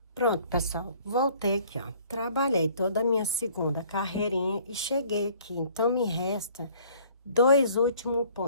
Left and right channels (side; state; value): both; inverted; correlation -0.56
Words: Pronto, pessoal, voltei aqui, ó, trabalhei toda a minha segunda carreirinha e cheguei aqui, então me resta 2 últimos